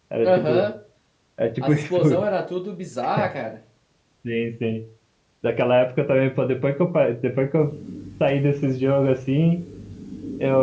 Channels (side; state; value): both; identical; correlation 1.00